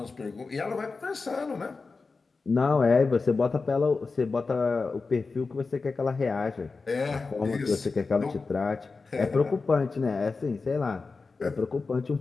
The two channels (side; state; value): right; quieter; 4.2 dB